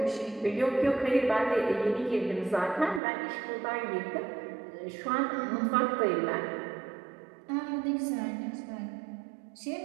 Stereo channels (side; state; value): left; drops out; at 3.0 s